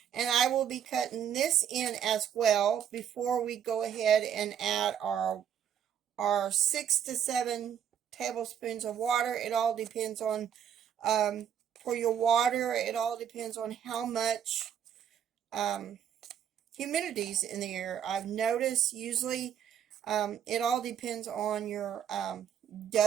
And I will be cutting this in as well before we go ahead and add our 6 to 7 tablespoons of water. It all depends on, for your water, it all depends on how much humidity's in the air. I've noticed usually it all depends on your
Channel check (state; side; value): quieter; left; 8.9 dB